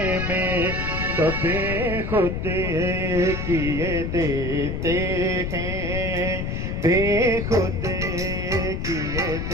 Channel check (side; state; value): left; noise; rumble, 3 dB below the sound